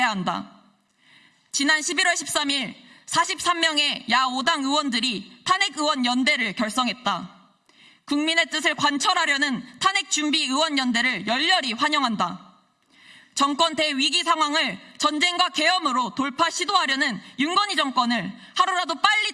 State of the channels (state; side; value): identical; both; correlation 1.00